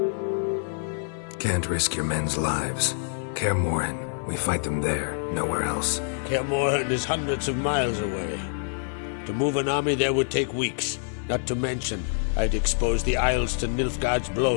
Can't risk your men's lives. Kaer Morhen, we fight them there, nowhere else. Kaer Morhen is hundreds of miles away. To move an army there would take weeks, not to mention I'd expose the Isles to Nilfgaard's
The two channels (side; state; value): right; silent; 58 dB below the other